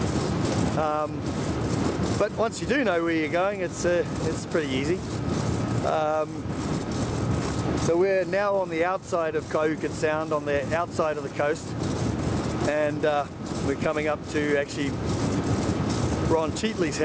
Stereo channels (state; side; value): identical; both; correlation 1.00